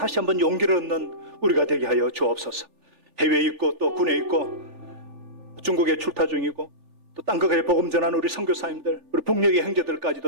한번 용기를 얻는 우리가 되게 하여 주옵소서. 해외에 있고 또 군에 있고 중국에 출타 중이고 또 땅끝에 복음 전하는 우리 선교사님들, 우리 북녘의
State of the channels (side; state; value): left; late; 3.4 ms